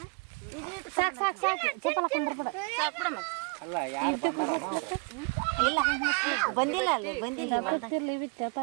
ಸಾಕು ಸಾಕು ಸಾಕು ಚಪ್ಪಲ ಕೊಂಡ್ಬಿಡ ಸಾಕು ಬಿಡಮ್ಮ. ಅಲ್ಲ ಯಾರು ಇಲ್ಲ ಬಂದಿಲ್ಲ ಅಲ್ಲಿ ಬಂದಿಲ್ಲ ಬರ್ತಿರ್ಲಿ ಬಿತ್ತು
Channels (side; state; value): left; quieter; 34.8 dB